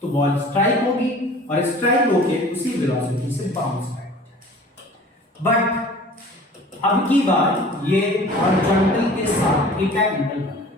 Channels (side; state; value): both; normal; correlation 0.45